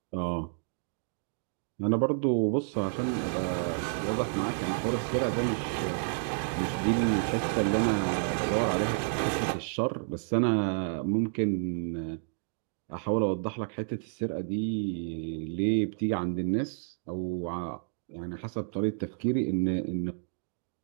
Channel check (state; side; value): silent; left; digital silence